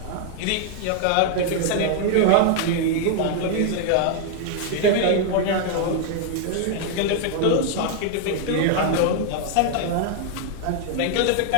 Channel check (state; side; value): different; both; correlation 0.00